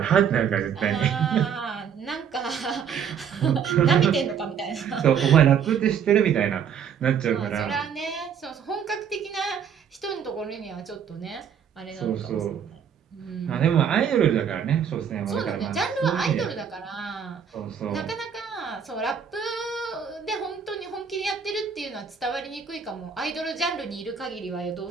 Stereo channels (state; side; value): quieter; left; 7.6 dB